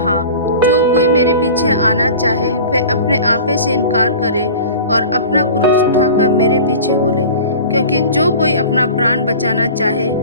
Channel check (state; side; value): inverted; both; correlation -0.38